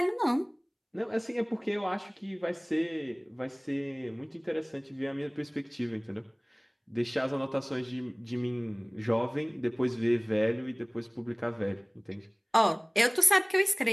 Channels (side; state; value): both; identical; correlation 1.00